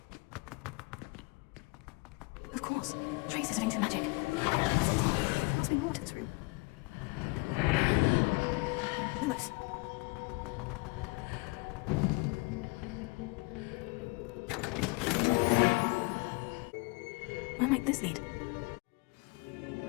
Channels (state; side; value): quieter; right; 27.9 dB